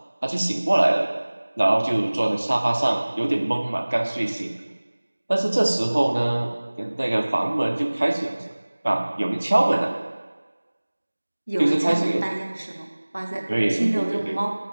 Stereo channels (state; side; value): inverted; both; correlation -1.00